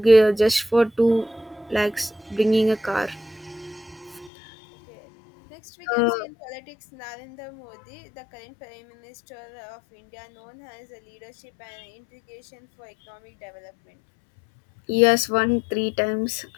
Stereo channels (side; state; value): right; drops out; at 4.3 s